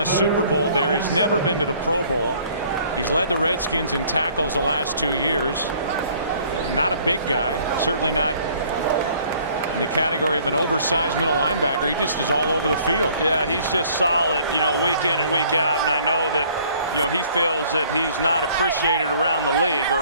Super Bowl there. He's never been to the Pro Bowl. He's led the Redskins in tackles the last 2 years. Not a big guy, certainly not in the category of an oversized middle linebacker. He just is all over the field. Yeah, he's just solid, you know, week in and week out. And I know that, you know, he feels that he's not appreciated around the league,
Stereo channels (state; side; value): inverted; both; correlation -0.57